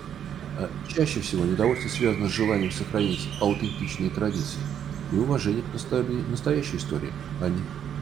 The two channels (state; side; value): quieter; left; 9.2 dB